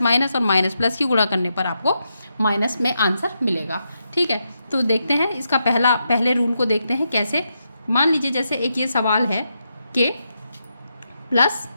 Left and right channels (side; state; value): both; inverted; correlation -0.84